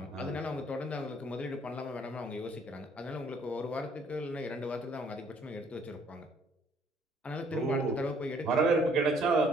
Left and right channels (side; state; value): both; normal; correlation 0.62